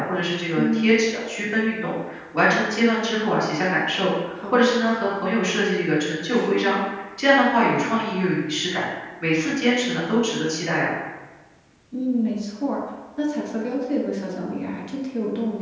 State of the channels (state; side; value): identical; both; correlation 1.00